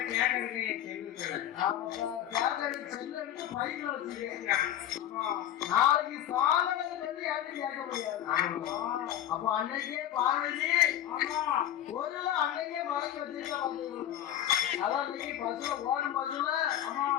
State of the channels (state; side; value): quieter; right; 11.4 dB